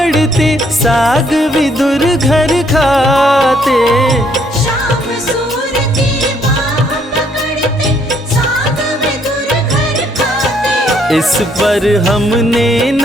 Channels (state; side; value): normal; both; correlation 0.68